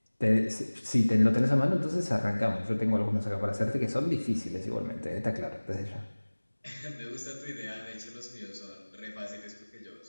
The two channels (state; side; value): inverted; both; correlation -1.00